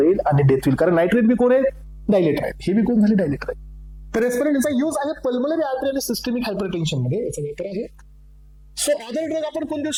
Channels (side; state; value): both; identical; correlation 1.00